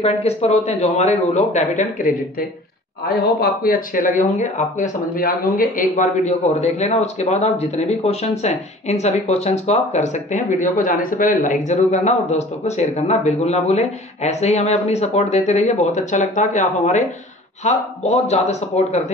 किस पर होते हैं, जो हमारे rule of debit and credit थे। आई होप आपको ये अच्छे लगे होंगे, आपको ये समझ में आ गए होंगे। एक बार वीडियो को और देख लेना, उसके बाद आप जितने भी क्वेश्चंस हैं इन सभी क्वेश्चंस को आप कर सकते हैं। वीडियो को जाने से पहले लाइक जरूर करना और दोस्तों को शेयर करना बिल्कुल ना भूलें। ऐसे ही हमें अपनी सपोर्ट देते रहिए, बहुत अच्छा लगता है कि आप हमारे बहुत ज्यादा सपोर्ट करते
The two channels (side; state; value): both; normal; correlation 0.46